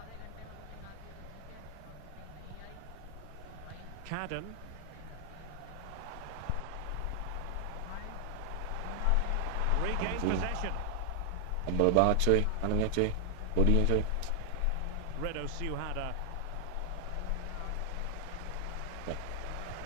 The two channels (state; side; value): different; both; correlation 0.00